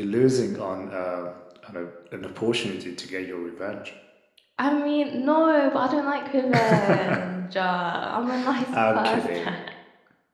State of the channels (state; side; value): identical; both; correlation 1.00